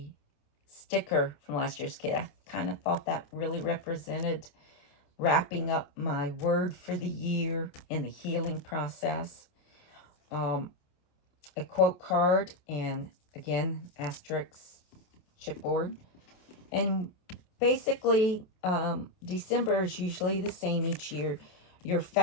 sticker from last year's kit. I kind of thought that really represented wrapping up my word for the year in the healing process. A quote card, and again, asterisk chipboard. And basically, December is usually the same each year. Your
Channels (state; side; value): late; right; 28 ms